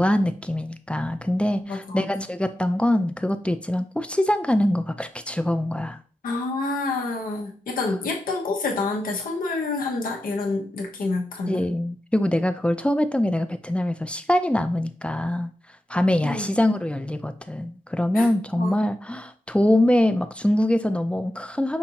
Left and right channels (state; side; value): normal; both; correlation 0.91